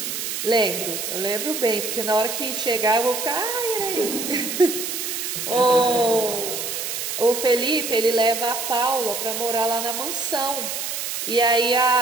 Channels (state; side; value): noise; right; hiss, 4 dB below the sound